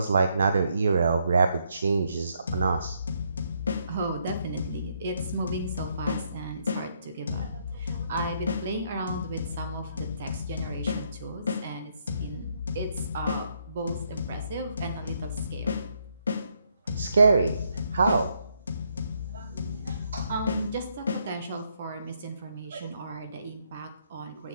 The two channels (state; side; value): inverted; both; correlation -0.74